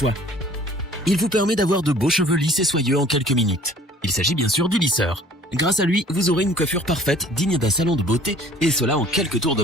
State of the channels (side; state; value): both; normal; correlation 0.52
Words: Il vous permet d'avoir de beaux cheveux lisses et soyeux en quelques minutes. Il s'agit bien sûr du lisseur. Grâce à lui, vous aurez une coiffure parfaite, digne d'un salon de beauté, et cela en quelques tours de